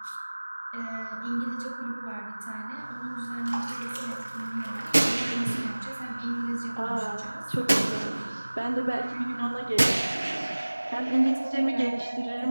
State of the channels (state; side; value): inverted; both; correlation -1.00